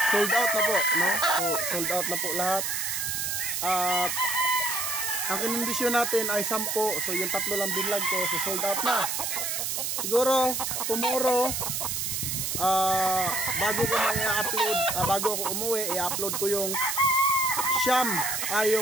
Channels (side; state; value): right; noise; hiss, 1 dB below the sound